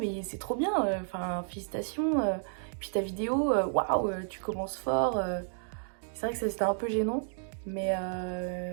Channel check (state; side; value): silent; left; digital silence